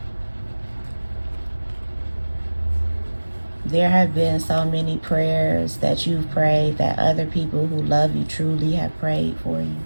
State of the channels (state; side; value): inverted; both; correlation -1.00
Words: There have been so many prayers that you've prayed that other people who love you truly have prayed for you.